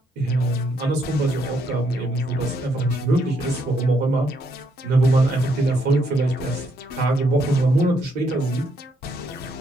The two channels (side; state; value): both; normal; correlation 0.74